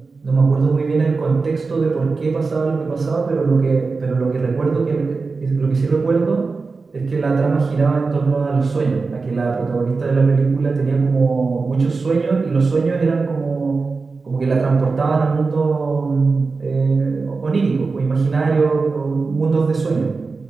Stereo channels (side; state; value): left; quieter; 4.3 dB